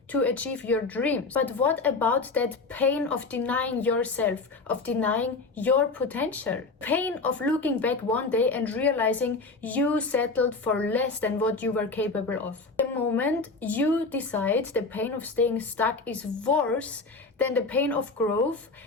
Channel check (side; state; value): right; quieter; 3.8 dB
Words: to achieve your dreams. But what about that pain of denying yourself, of denying your potential? Pain of looking back one day and realizing you settled for less than what you were capable of. The moment you decide the pain of staying stuck is worse than the pain of growth,